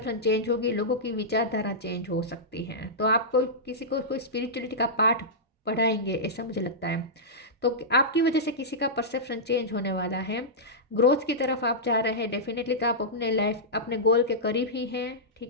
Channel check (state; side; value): normal; both; correlation -0.13